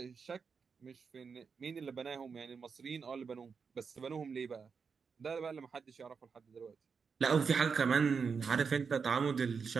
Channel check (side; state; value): left; quieter; 5.7 dB